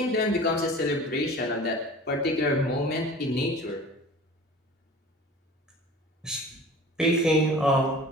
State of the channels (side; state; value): both; normal; correlation 0.41